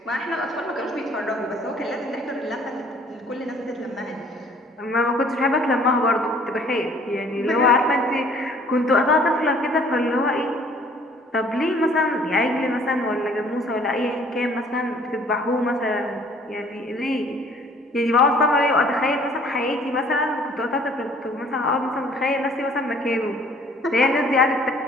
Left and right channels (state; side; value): normal; both; correlation 0.56